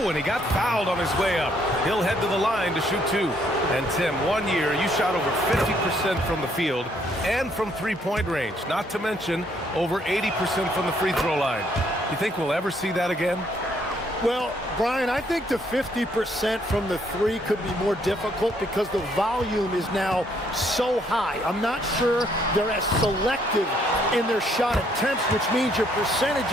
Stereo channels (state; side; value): normal; both; correlation 0.68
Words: and he got fouled on his way up. He'll head to the line to shoot 2. And Tim, 1 year, you shot over 50% from the field and from three-point range, not to mention over 80% from the free throw line. You think we'll ever see that again? Well, Brian, I think the 50% from the three could be more difficult because the volume is now so high. I'm not sure they're as selective in their shot attempts, which means your